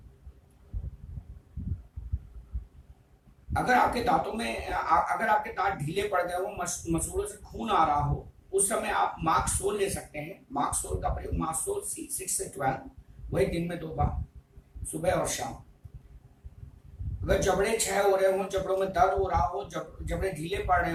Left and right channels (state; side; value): identical; both; correlation 1.00